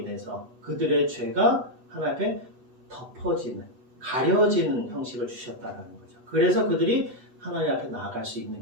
그들의 죄가 하나님 앞에 덮어지는, 가려지는 형식을 주셨다는 거죠. 그래서 그들이 하나님 앞에 나아갈 수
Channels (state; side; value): late; left; 8.1 ms